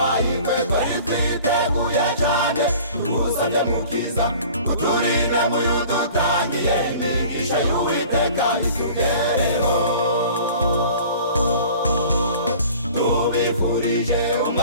twari twiteguye cyane tugusabye mukiza kuturinda mu yudutangiye imigisha y'Uwiteka itugereho tubifurije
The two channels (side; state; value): both; inverted; correlation -0.46